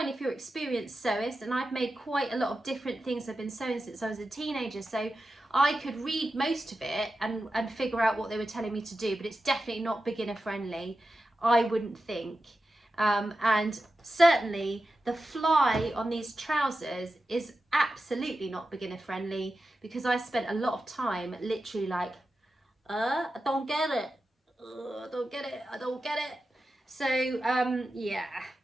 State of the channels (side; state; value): both; normal; correlation 0.92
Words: if you're experienced sewist, and I've made quite a lot of different things. I've been sewing since I was a teenager, so I could read most of it and figure out what they were telling me to do, but it's definitely not beginner friendly, I wouldn't think. And certainly the fly on these trousers is absolutely not beginner friendly, because I spent a lot of time literally like, I don't get it, I don't get it, I don't get it. So yeah,